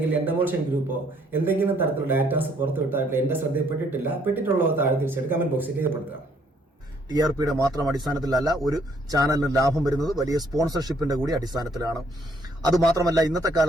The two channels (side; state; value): both; normal; correlation 0.66